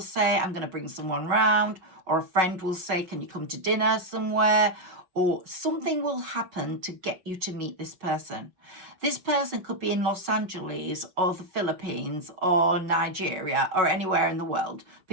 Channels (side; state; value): left; late; 5.7 ms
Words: I'm going to bring someone round, or a friend will say, can you come to dinner somewhere? Or something will happen to get you to meet this person. This person could be in Los Angeles or the Philippines or Nigeria or anywhere in the world,